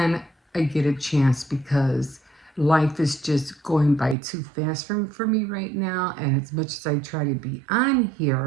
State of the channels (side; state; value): left; drops out; at 4.2 s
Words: I get a chance because life is just going by too fast for me right now. And as much as I try to be on